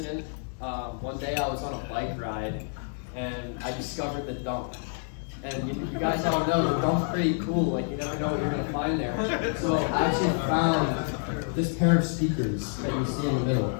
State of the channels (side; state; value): right; silent; 59 dB below the other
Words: One day I was on a bike ride and I discovered the dump. And you guys all know the dump's pretty cool, like you never know what you're gonna find there. So I actually found this pair of speakers that you see in the middle.